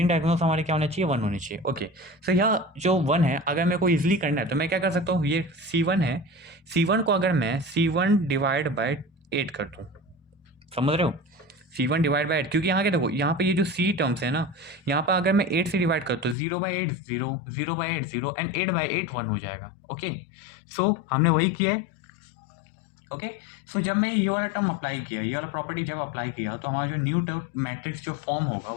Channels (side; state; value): right; drops out; at 16.4 s